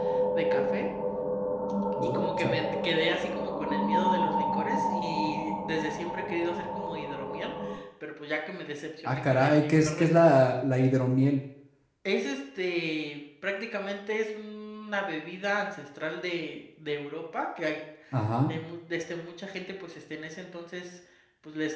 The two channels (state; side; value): identical; both; correlation 1.00